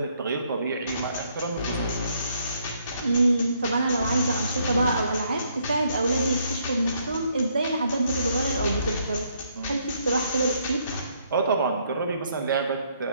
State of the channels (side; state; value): both; inverted; correlation -0.71